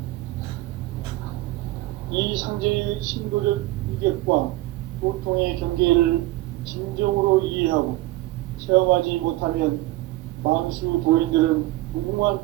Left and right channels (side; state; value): left; quieter; 18.3 dB